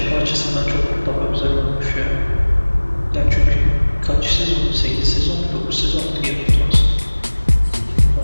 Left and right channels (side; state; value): both; inverted; correlation -1.00